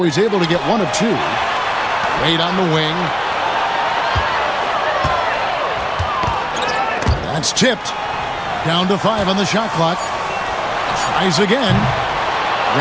he's able to get 1 of 2. Wade on the wing. That's tipped. Down to 5 on the shot clock. Tries again.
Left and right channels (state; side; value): identical; both; correlation 1.00